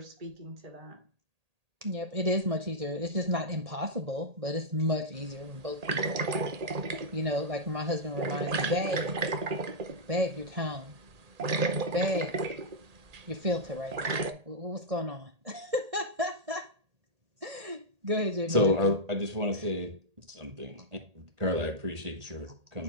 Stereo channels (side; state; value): left; late; 1.8 ms